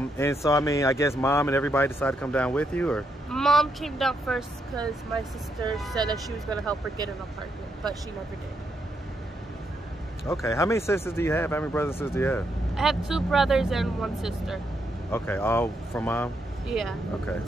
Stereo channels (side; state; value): both; normal; correlation 0.78